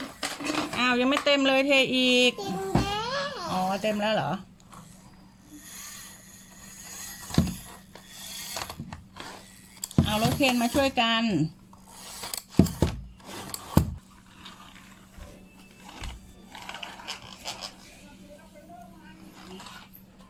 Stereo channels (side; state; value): both; identical; correlation 1.00